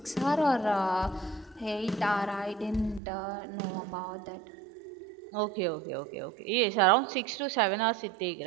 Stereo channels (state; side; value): drops out; left; at 3.0 s